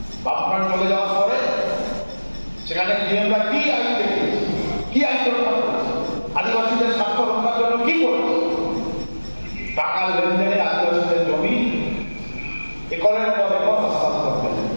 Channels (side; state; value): both; inverted; correlation -1.00